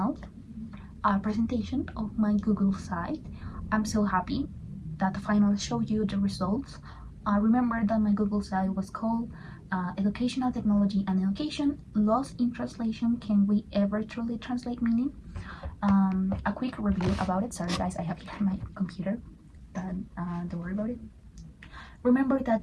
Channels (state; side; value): identical; both; correlation 1.00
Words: presentation of my Google site. I'm so happy that the final showed you the results. Remember that my Google site was called Educational Technology and Education Lost in Translation. Can we ever truly translate meaning? A quick review about it. Sorry guys, I have here my computer, but don't worry about it. Remember that